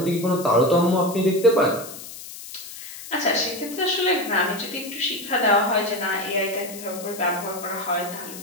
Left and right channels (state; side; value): noise; left; hiss, 13 dB below the sound